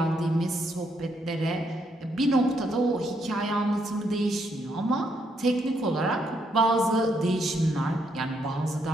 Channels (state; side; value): normal; both; correlation 0.75